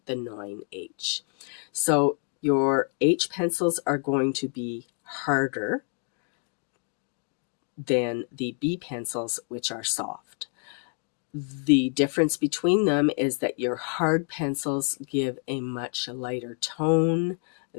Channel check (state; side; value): quieter; right; 39.1 dB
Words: the 9H. So your H pencils are going to be harder than the B pencils, which are soft. The difference between them is that your hard pencils give a much lighter tone